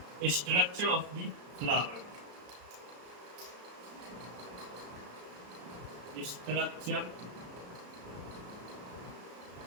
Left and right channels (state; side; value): late; left; 34 ms